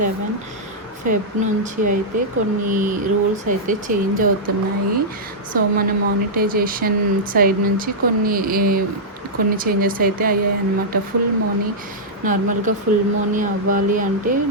ఫెబ్ నుంచి అయితే కొన్ని రూల్స్ అయితే చేంజ్ అవుతున్నాయి. సో మన మానిటైజేషన్ సైడ్ నుంచి కొన్ని చేంజెస్ అయితే అయ్యాయి అన్నమాట. నార్మల్గా ఫుల్ మనీ అవ్వాలి అంటే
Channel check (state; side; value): normal; both; correlation -0.09